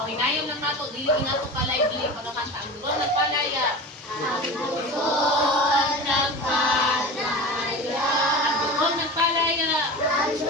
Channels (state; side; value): normal; both; correlation 0.31